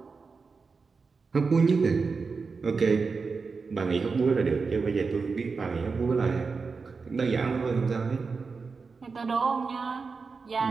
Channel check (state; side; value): quieter; left; 4.7 dB